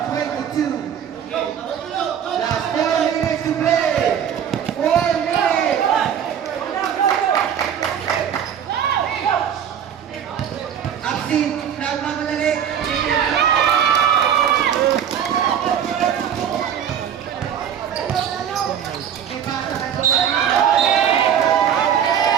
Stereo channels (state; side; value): quieter; left; 8.8 dB